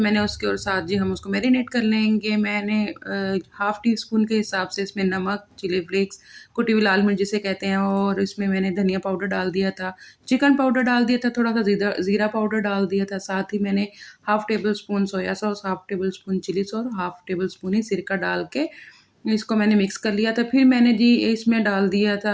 उसके, और साथ जी हम उसको मैरिनेट कर लेंगे। मैंने हाफ़ टी स्पून के हिसाब से इसमें नमक, चिली फ्लेक्स, कुटी हुई लाल मिर्च जिसे कहते हैं, और इसमें मैंने धनिया पाउडर डाल दिया था, चिकन पाउडर डाल दिया था, थोड़ा सा ज़ीरा पाउडर डाल दिया था। साथ ही मैंने half tablespoon soya sauce, half tablespoon chilli sauce, half tablespoon ही सिरका डाल के इसको मैंने मिक्स कर लिया था। फिर मैंने जी इसमें डाल दिया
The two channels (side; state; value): both; identical; correlation 1.00